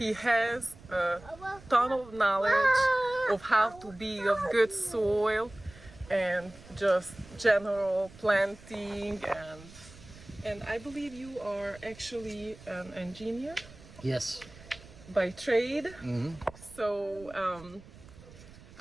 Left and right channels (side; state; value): right; noise; rumble, 20 dB below the sound